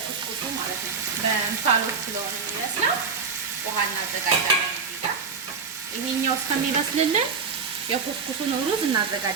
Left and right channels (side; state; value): left; quieter; 5.4 dB